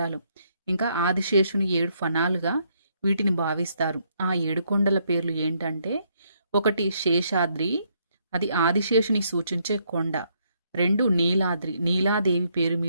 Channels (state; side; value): inverted; both; correlation -0.73